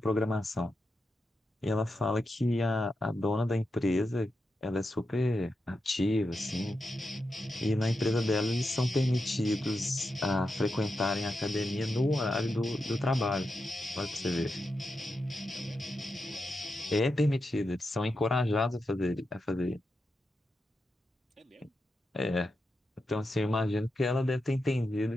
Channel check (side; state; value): both; normal; correlation 0.88